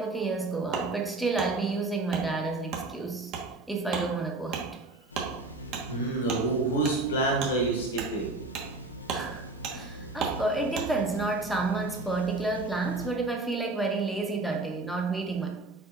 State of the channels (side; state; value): left; quieter; 3.2 dB